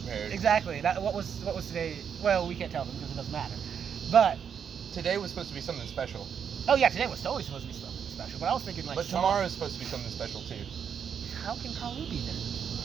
Exactly. What was today? Well, we can't tell them because it doesn't matter. But today was supposed to be something special. Oh yeah, today was totally supposed to be something special. But I was thinking like. But tomorrow's supposed to be something special too. How can Kalu be then?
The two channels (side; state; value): left; quieter; 7.6 dB